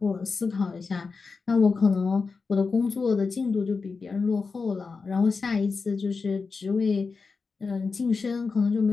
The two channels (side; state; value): right; quieter; 4.6 dB